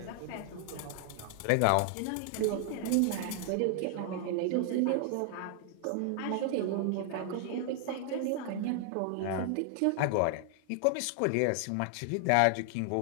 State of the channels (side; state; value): both; different; correlation 0.00